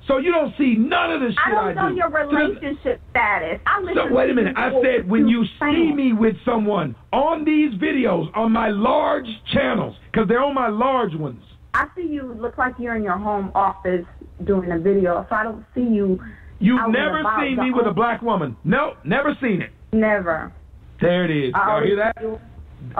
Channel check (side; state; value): both; identical; correlation 1.00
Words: So you don't see none of the shit I do. I don't know your relationship status. So wait a minute. I said when you see me with someone on these videos on my large channels, because they're on my large ones. I see you look like you're in your home office doing a video, so I don't see you. You've never seen me with a black woman. No, never seen it. Never. There it is. Y'all hear that?